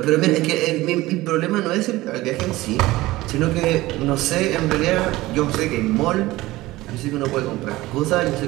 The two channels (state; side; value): quieter; left; 18.4 dB